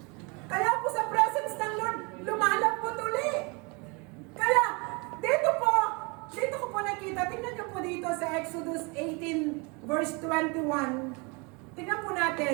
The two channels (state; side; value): quieter; left; 30.2 dB